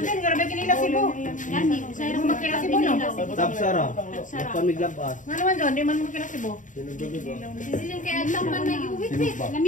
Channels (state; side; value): late; right; 0.37 ms